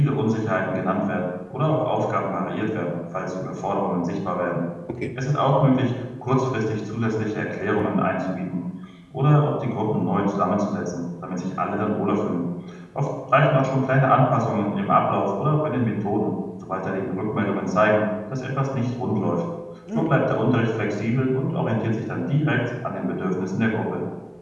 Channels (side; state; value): both; identical; correlation 1.00